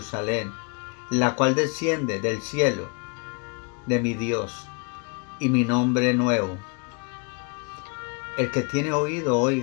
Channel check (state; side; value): quieter; right; 34.5 dB